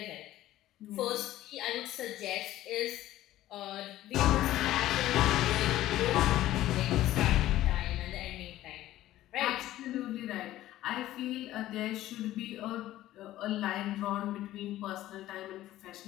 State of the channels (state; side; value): quieter; right; 14.5 dB